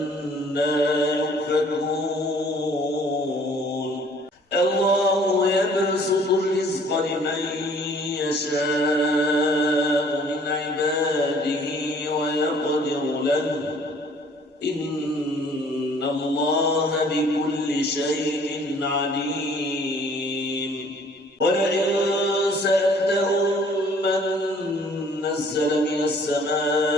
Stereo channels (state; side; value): normal; both; correlation 0.56